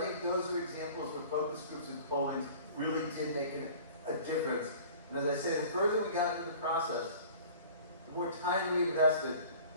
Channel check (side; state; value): both; inverted; correlation -0.45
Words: think those are examples where focus groups and pollings really did make a difference. And as I say, the further we got into the process, the more time we invested,